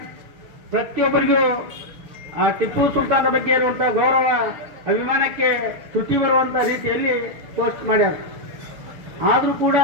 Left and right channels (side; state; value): left; late; 7.1 ms